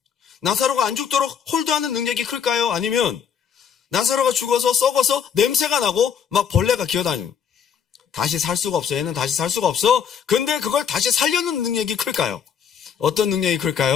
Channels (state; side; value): quieter; right; 7.7 dB